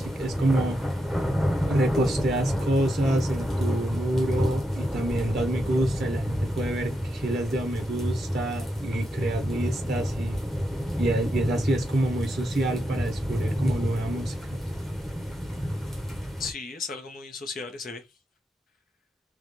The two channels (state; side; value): normal; both; correlation 0.84